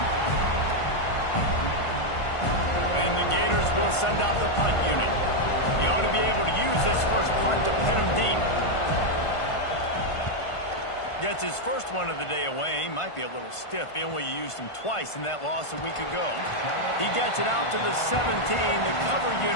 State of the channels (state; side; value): late; right; 1.5 ms